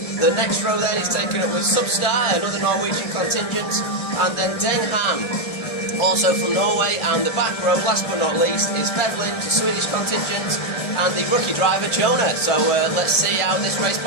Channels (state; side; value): late; right; 1.6 ms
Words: The next row then is taken up with Substar, another Norwegian contingent, and then Deng Ham, also from Norway, and the back row, last but not least, is Bevlin, the Swedish contingent, and the rookie driver Jonah. So let's see how this race